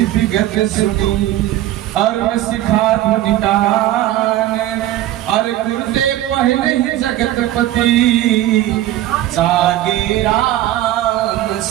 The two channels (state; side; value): quieter; left; 14.0 dB